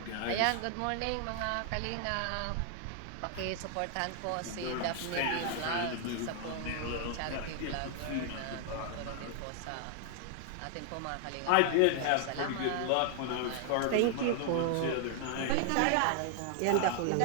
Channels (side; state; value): both; different; correlation 0.00